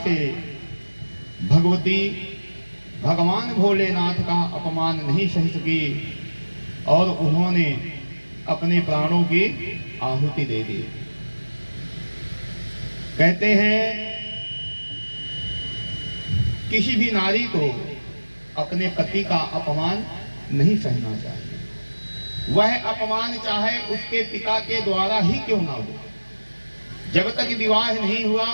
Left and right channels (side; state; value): both; inverted; correlation -1.00